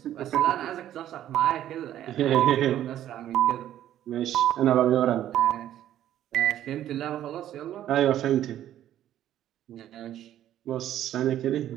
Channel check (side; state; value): left; quieter; 11.9 dB